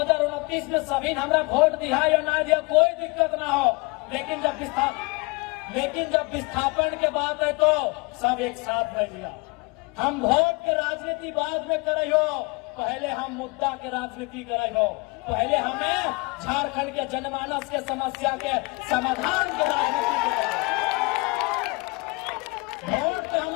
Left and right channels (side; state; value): right; quieter; 27.1 dB